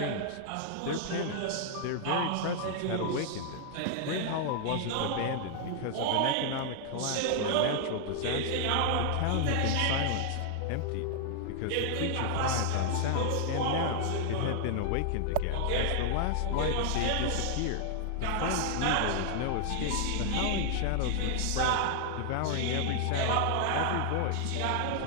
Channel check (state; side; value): different; both; correlation 0.00